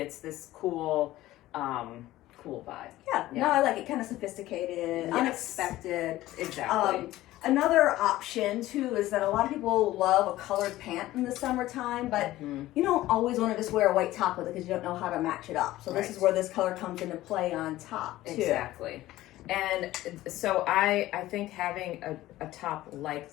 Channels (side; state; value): right; quieter; 16.0 dB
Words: this cool vibe. Yeah. No, I like it. Kind of sophisticated, unexpected. Exactly. Another option too is that a lot of people love a colored pant in the summertime, but you don't always want to just wear a white top with it because you don't know how to match it up. So this is where this color comes into play on top too. Exactly. And so I think having a top like